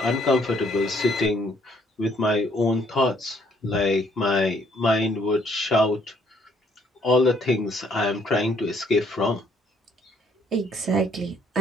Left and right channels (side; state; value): both; normal; correlation 0.66